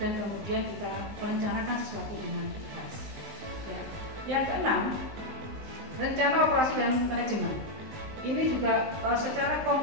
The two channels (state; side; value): late; left; 19 ms